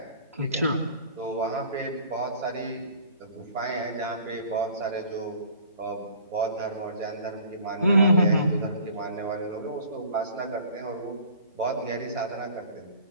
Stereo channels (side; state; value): both; inverted; correlation -0.49